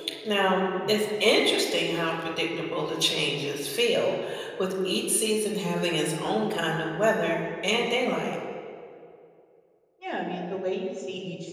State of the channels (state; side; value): identical; both; correlation 1.00